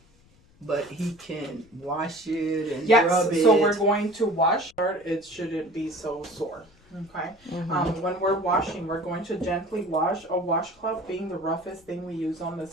but he can wash it and Yes, rub it. so we're going to wash. It shouldn't be so sore. Okay. When we're washing, we're going to gently wash. A washcloth being the roughest thing we use on the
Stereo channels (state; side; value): noise; left; rumble, 29 dB below the sound